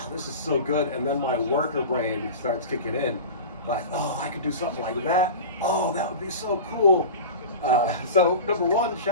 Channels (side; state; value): both; inverted; correlation -0.32